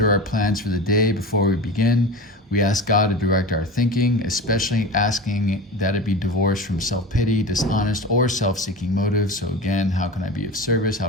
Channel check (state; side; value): normal; both; correlation 0.30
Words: our plans for the day before we begin. We ask God to direct our thinking, especially asking that it be divorced from self-pity, dishonest, or self-seeking motives. So again, how can I be of service? How